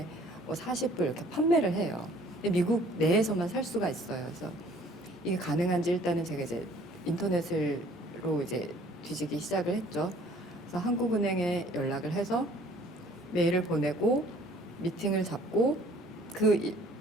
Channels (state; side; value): normal; both; correlation 0.55